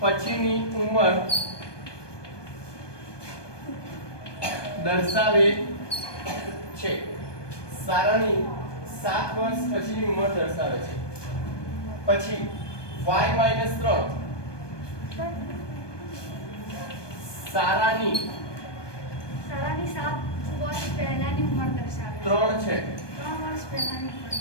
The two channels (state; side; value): late; right; 1.2 ms